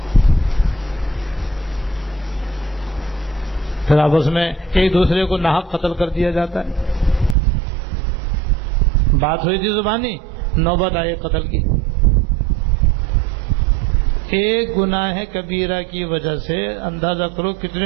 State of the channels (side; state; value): left; drops out; at 7.4 s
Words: پھر آپس میں ایک دوسرے کو ناحق قتل کر دیا جاتا ہے۔ بات ہوئی تھی زبانی، نوبت آئی قتل کی۔ ایک گناہ کبیرہ کی وجہ سے اندازہ کرو